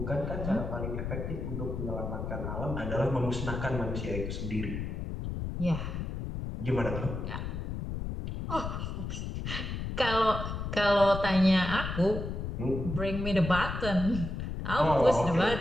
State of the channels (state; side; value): noise; left; rumble, 5 dB below the sound